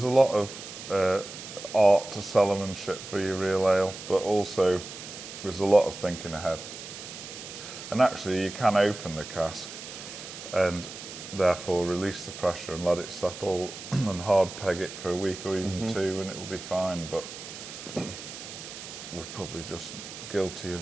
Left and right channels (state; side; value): noise; right; hiss, 12 dB below the sound